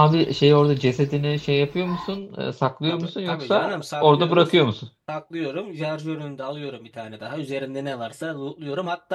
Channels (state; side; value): identical; both; correlation 1.00